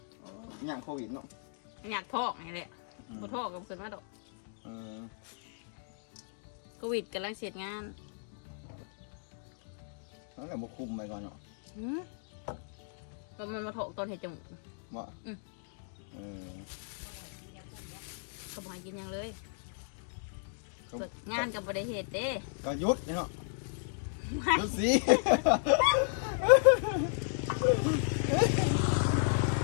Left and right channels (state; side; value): silent; right; digital silence